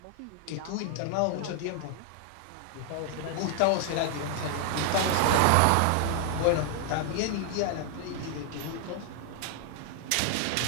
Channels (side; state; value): both; different; correlation 0.00